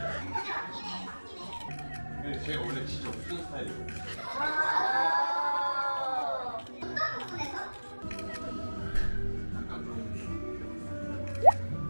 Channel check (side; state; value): both; inverted; correlation -1.00